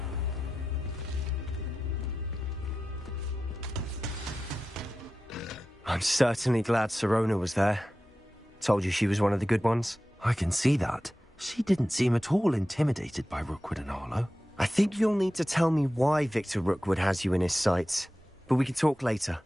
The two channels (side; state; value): both; normal; correlation 0.93